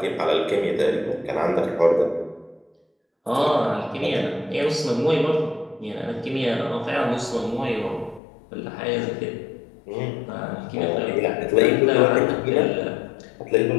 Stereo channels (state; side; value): drops out; right; at 8.2 s